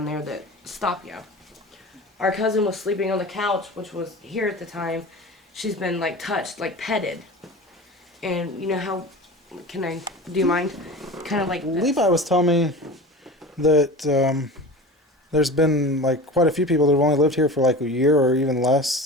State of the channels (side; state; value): both; normal; correlation 0.33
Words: there that stop you. Our cousin was sleeping on the couch, which was here at the time. She's been like touched, like petted. And you know how, do you mind? Kind of like this. Levi was telling me that there's been like quite a few people that have only lived here for like a year or even